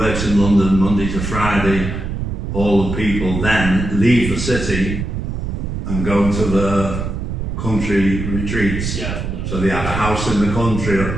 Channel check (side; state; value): right; noise; rumble, 4 dB below the sound